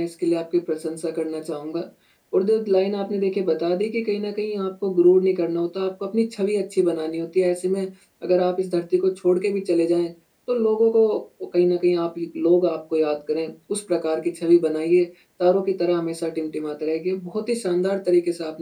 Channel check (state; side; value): identical; both; correlation 1.00